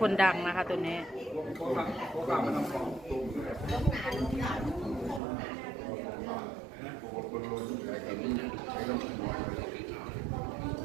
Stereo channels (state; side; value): drops out; left; at 5.2 s